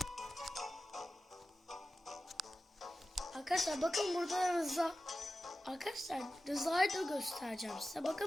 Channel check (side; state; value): both; normal; correlation 0.94